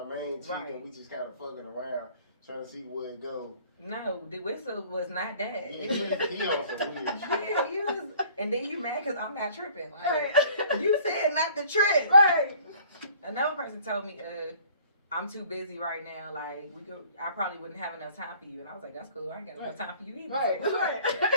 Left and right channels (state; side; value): inverted; both; correlation -0.53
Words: main chick, Right. and we just kind of fucking around, trying to see where it go. No, the whistle was not that. He It was, he on some weird shit. yeah, you was, and then you mad because I'm not tripping. Like, Right. you said not to trip. Right. Another person told me, I'm too busy right now. Like, I probably wouldn't have enough time for you. And I was like, that's cool. I ain't got enough time for you either. Right. Right.